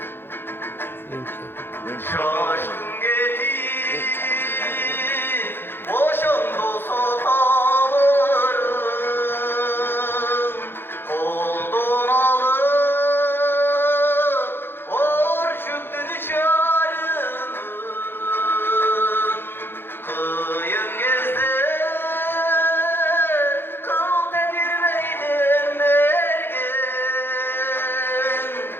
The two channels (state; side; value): late; right; 0.10 ms